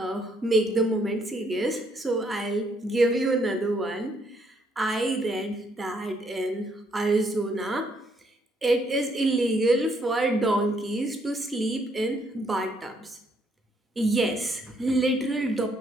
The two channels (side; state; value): both; normal; correlation 0.71